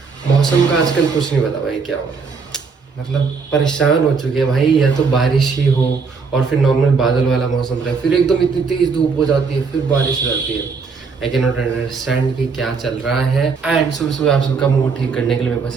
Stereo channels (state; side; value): quieter; left; 5.1 dB